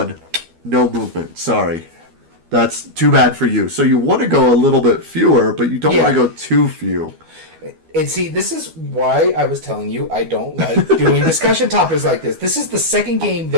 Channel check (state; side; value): late; left; 12 ms